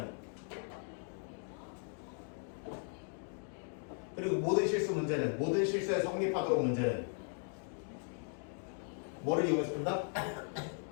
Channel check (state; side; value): silent; right; 53 dB below the other